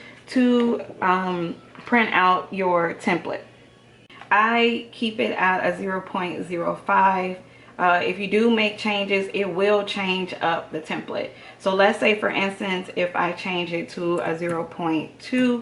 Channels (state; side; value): identical; both; correlation 1.00